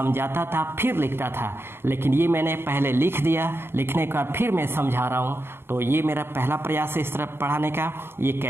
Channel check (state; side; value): late; left; 0.11 ms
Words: था, फिर लिखता था, लेकिन ये मैंने पहले लिख दिया, लिखने के बाद फिर मैं समझा रहा हूँ। तो ये मेरा पहला प्रयास है इस तरह पढ़ाने का। ये